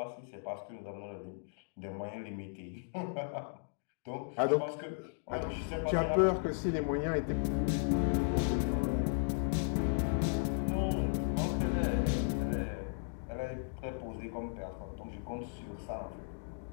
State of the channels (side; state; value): right; silent; digital silence